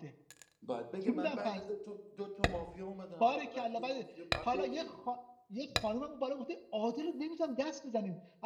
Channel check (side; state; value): both; identical; correlation 1.00